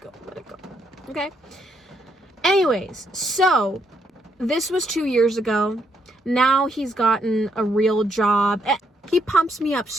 Let it go. Okay? Anyways, so this was 2 years ago. Now he's gotten a real job. He pumps me up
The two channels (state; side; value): normal; both; correlation 0.74